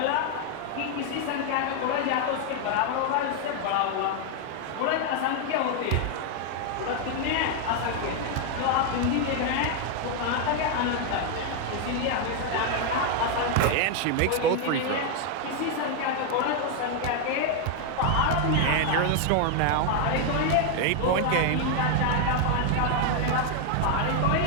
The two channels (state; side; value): different; both; correlation 0.00